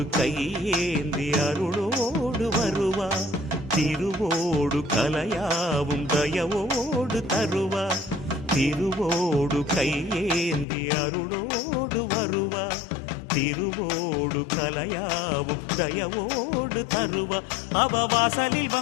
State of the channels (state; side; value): drops out; right; at 10.7 s